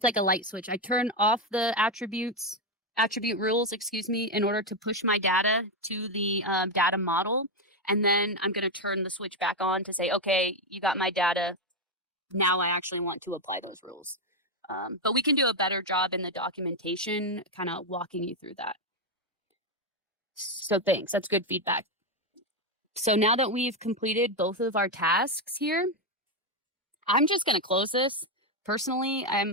like a light switch. I turn off the attribute rules, in order to push my data to the data model. And then I'm going to turn the switch back on to say, okay, you got my data. Now I actually want to apply those rules. But we can do a better job in the documentation, kind of walking you through that. So thanks, that's good feedback. So now that we've completed both of our tasks here, I'm just going to close this. Personally,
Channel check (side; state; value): both; normal; correlation 0.06